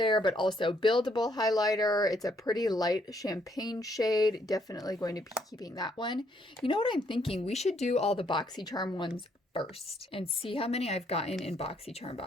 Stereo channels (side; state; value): both; normal; correlation 0.70